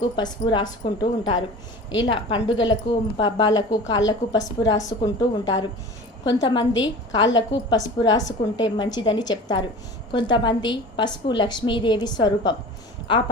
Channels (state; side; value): normal; both; correlation 0.38